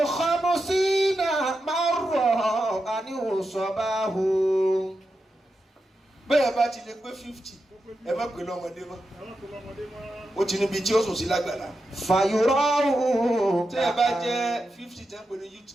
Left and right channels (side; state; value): both; normal; correlation 0.88